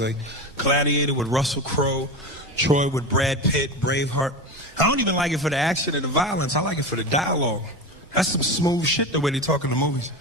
Gladiator with Russell Crowe, Troy with Brad Pitt, Braveheart. I don't even like it for the action and the violence. I like it for the dialogue. That's some smooth shit, the way they talk in the movies.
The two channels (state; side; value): normal; both; correlation 0.24